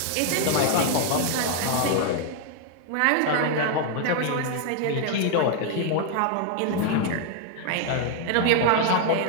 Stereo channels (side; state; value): both; different; correlation 0.00